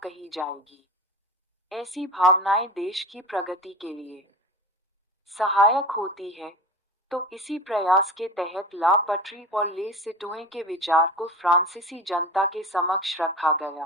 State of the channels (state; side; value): normal; both; correlation 0.33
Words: जाएगी। ऐसी भावनाएं देश की प्रगति के लिए सहायक होती है। तो इसी प्रयास के तहत ला पटरी और ले सिटोए के विचार को फ्रांसीसी जनता के समक्ष रखा